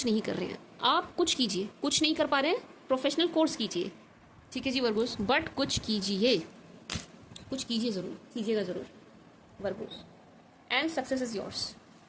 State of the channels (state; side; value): identical; both; correlation 1.00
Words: नहीं कर रहे हैं। आप कुछ कीजिए, कुछ नहीं कर पा रहे हैं, प्रोफेशनल कोर्स कीजिए। ठीक है जी वर्गोस, बट कुछ कीजिए, कुछ कीजिए, ज़रूर कीजिएगा, ज़रूर Virgo's, and success is yours.